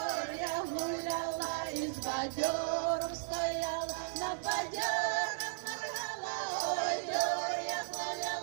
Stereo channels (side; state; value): left; silent; digital silence